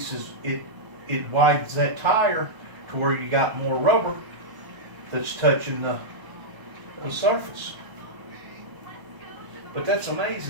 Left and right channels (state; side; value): late; left; 1.0 ms